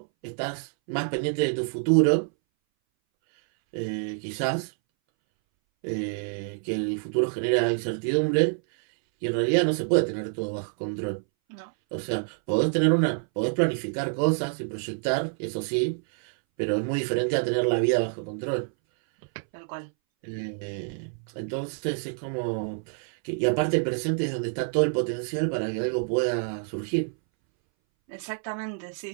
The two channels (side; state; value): left; silent; 60 dB below the other